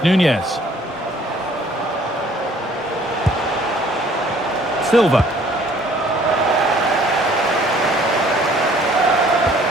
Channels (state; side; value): normal; both; correlation 0.57